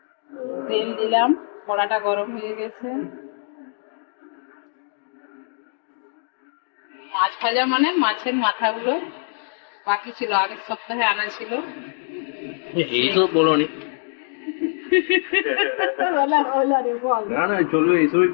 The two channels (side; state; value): right; silent; digital silence